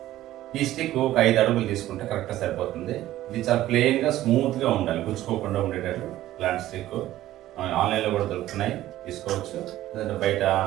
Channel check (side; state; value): left; quieter; 14.4 dB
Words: ఈ స్టిక్ ఒక 5 అడుగులు తీసుకుంటే కరెక్ట్గా సరిపోతుంది. ఇది చాలా ప్లెయిన్గా స్మూత్గా ఉండాలి, గుచ్చుకోకుండా ఉండేటట్టు. ఇలాంటి స్టిక్ ఆన్లైన్లో కూడా దొరుకుతున్నాయి, తీసుకోవచ్చు. లేదంటే బయట